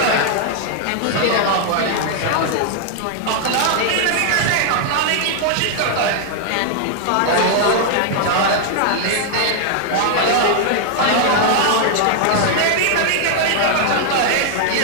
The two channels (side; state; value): both; different; correlation 0.00